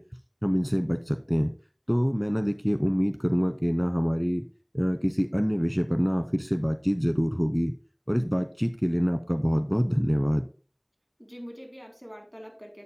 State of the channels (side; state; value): both; identical; correlation 1.00